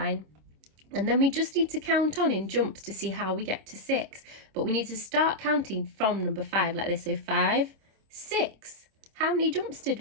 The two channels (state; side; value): late; left; 26 ms